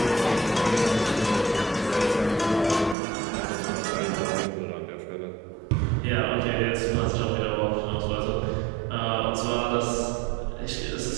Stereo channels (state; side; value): drops out; left; at 3.0 s